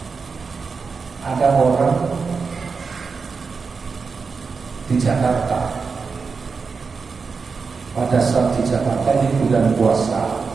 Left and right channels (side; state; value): left; quieter; 5.0 dB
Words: Ada orang di Jakarta, pada saat di Jakarta ini bulan puasa,